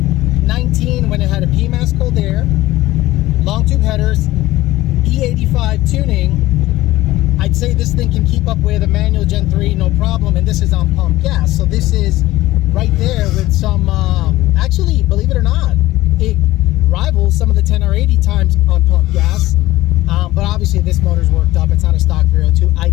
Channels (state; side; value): quieter; right; 17.0 dB